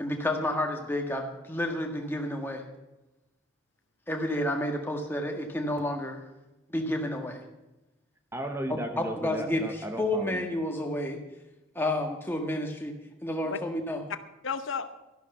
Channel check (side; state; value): both; normal; correlation 0.58